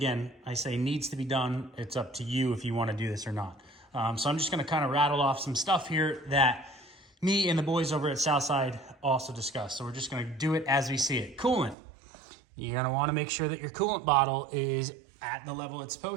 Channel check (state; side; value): drops out; left; at 11.8 s